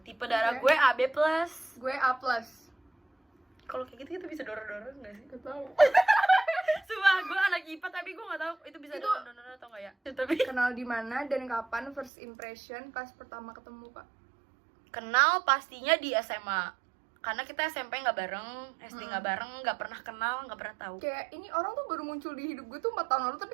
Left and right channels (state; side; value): drops out; left; at 12.1 s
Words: Tipe darah Oke. gue AB+. Gue A+. Kalau kayak gitu kita bisa dorong-dorong nggak sih? Gak tau. Sumpah, gue anak IPA tapi gue nggak tahu itu bisa Itu- dorong-dorong atau nggak ya. Tapi Kenal di mana dan kapan first impression pas pertama ketemu, Kak? kenal pastinya di SMA. Karena kita SMP nggak bareng, SD nggak bareng, nggak pernah kenal, nggak pernah tahu. Kayak ini orang tuh baru muncul di hidup gue tuh 4 tahun lalu, tapi